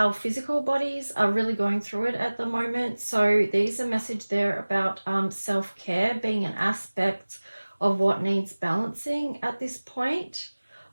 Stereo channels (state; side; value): inverted; both; correlation -1.00